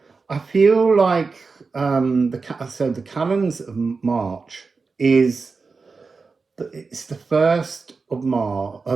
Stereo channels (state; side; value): quieter; left; 4.5 dB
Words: I feel like the calends of March is it's the first of Mars.